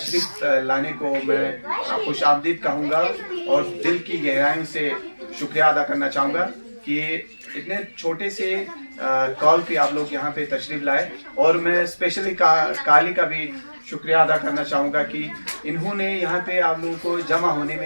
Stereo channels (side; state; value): both; inverted; correlation -1.00